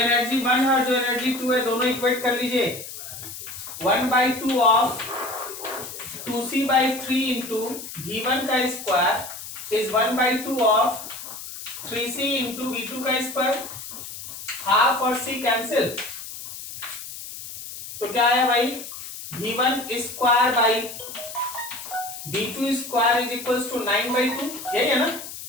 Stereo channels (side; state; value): left; noise; hiss, 11 dB below the sound